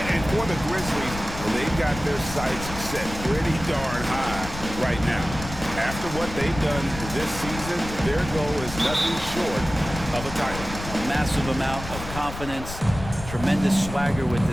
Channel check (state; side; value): noise; left; rumble, 10 dB below the sound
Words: And for the Grizzlies, they've got their sights set pretty darn high right now. After what they've done this season, their goal is nothing short of a title. A massive amount of confidence, tremendous swagger with